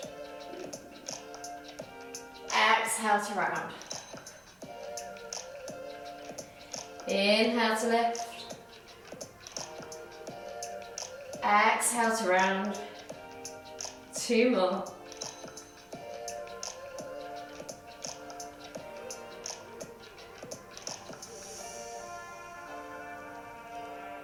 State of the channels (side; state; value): both; identical; correlation 1.00